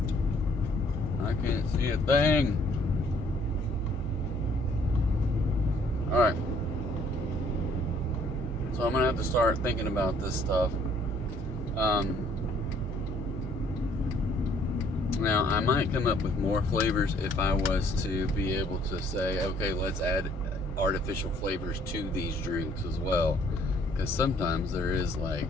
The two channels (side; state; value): both; normal; correlation 0.62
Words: I can't see a thing. Alright. So I'm going to have to start thinking about this stuff. Now, I might come up with more flavors if I was to be able to say, okay, let's add artificial flavors to these drinks as well. Because sometimes there is like